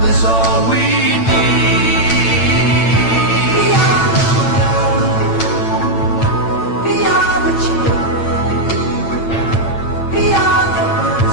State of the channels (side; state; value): right; late; 8.9 ms